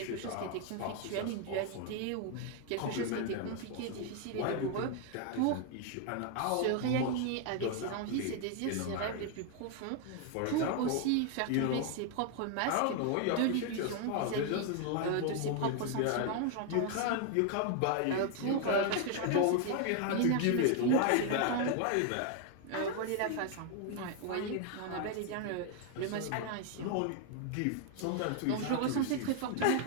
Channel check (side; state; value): both; different; correlation 0.00